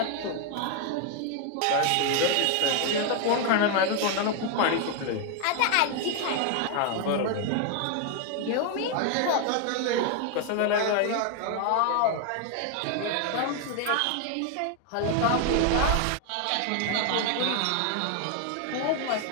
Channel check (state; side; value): different; both; correlation 0.01